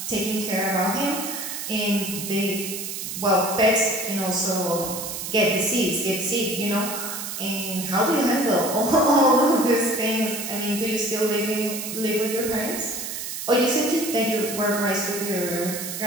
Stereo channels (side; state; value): right; noise; hiss, 6 dB below the sound